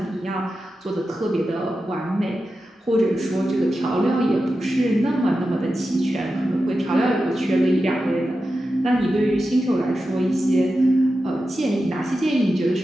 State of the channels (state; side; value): normal; both; correlation 0.91